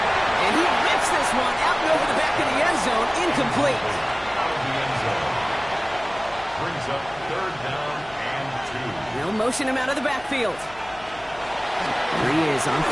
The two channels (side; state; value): left; noise; hum, 23 dB below the sound